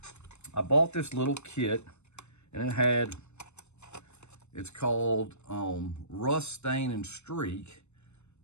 I bought this little kit, and it's called Rust, Stain, and Streak.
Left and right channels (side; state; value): right; late; 0.82 ms